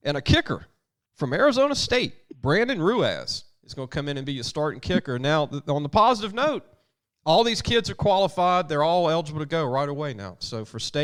And a kicker from Arizona State, Brandon Ruiz, is going to come in and be a starting kicker. Now, on the positive note, all these kids are qualified. They're all eligible to go right away now. So for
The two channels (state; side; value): identical; both; correlation 1.00